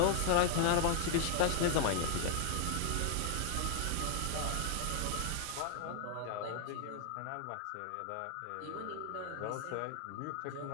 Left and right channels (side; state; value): both; different; correlation 0.00